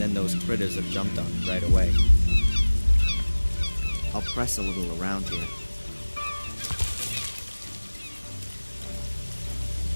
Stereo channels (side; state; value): both; inverted; correlation -1.00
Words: those critters have jumped on it right away. I'll press a little around here.